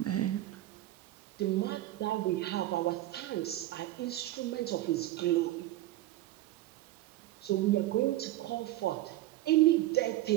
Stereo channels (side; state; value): left; quieter; 15.6 dB